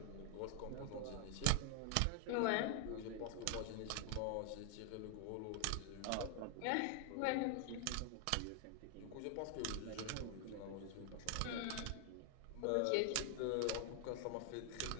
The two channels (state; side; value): different; both; correlation 0.00